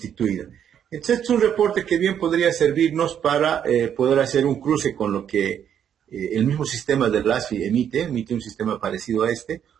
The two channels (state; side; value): quieter; left; 9.0 dB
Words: Entonces, es un reporte que bien podría servirnos para poder hacer un cruce con lo que el mismo sistema del ASFI emite un sistema parecido a este,